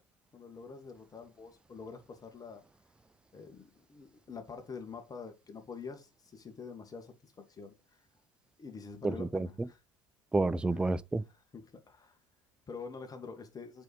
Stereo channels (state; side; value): normal; both; correlation 0.90